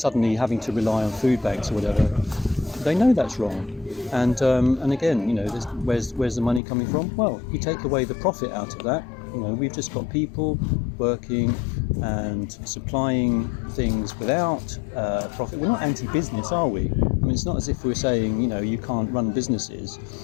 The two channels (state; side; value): drops out; right; at 6.6 s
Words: having to rely on food banks or whatever, they know that's wrong. And again, where's the money coming from? Well, you take away the profit out of that. We've just got people working and supplying things without profit. We're not anti-business, are we? It's not as if we're saying, you can't run businesses.